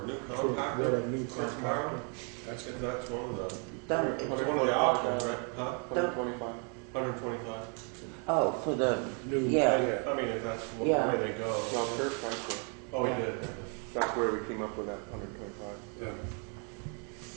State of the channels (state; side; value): quieter; left; 38.6 dB